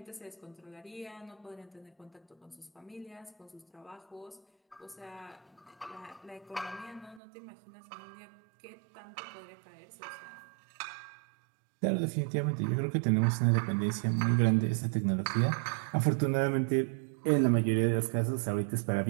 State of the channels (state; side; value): drops out; left; at 7.2 s